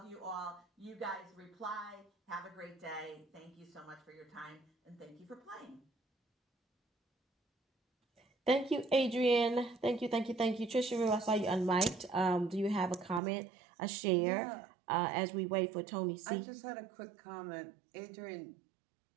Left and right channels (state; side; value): drops out; left; at 13.2 s